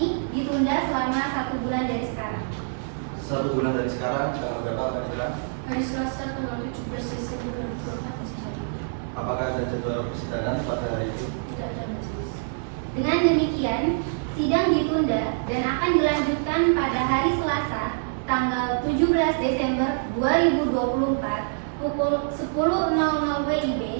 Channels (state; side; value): silent; left; 61 dB below the other